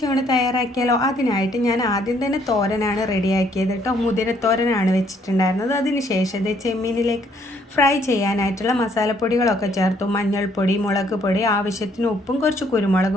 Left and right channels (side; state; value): both; normal; correlation 0.66